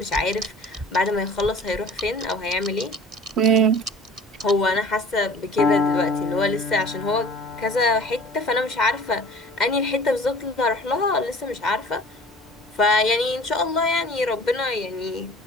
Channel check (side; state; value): both; normal; correlation 0.45